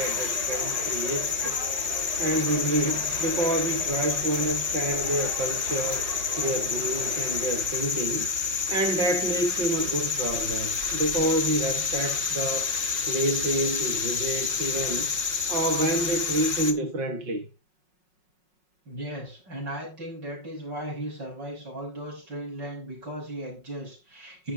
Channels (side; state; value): left; late; 5.4 ms